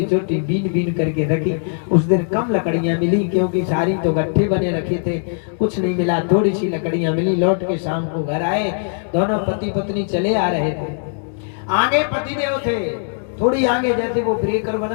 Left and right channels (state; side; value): silent; right; digital silence